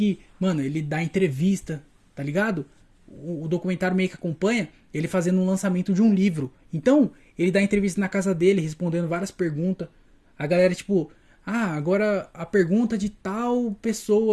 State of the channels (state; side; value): identical; both; correlation 1.00